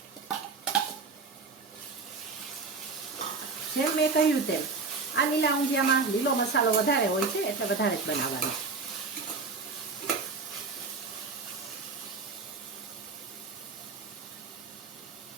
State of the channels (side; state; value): left; quieter; 4.3 dB